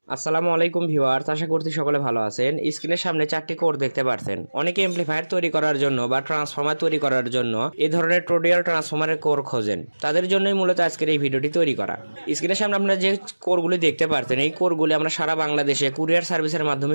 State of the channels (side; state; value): both; inverted; correlation -1.00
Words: আসসালামু আলাইকুম ভিউয়ার্স, আশা করছি সকলে ভালো আছেন। স্ক্রিনের সামনে চারটি কোড দেখতে পাচ্ছেন। অনেকে এমপ্লিফায়ার তৈরি করার জন্য বা ট্রান্সফর্মার তৈরি করার জন্য এই ধরনের টোডিয়াল ট্রান্সফর্মারের কোর খোঁজেন। তাদের জন্যই মূলত আজকের এই ভিডিওটি তৈরি করা। স্ক্রিনের সামনে আপনারা যে কোরগুলি দেখতে পাচ্ছেন, এই কোরগুলি আমরা সারা বাংলাদেশে কুরিয়ার সার্ভিসের মাধ্যমে